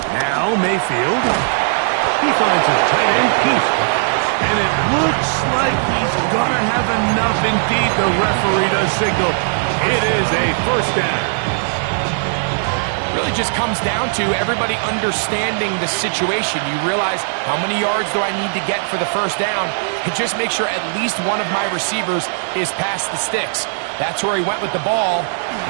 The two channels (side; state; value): left; silent; digital silence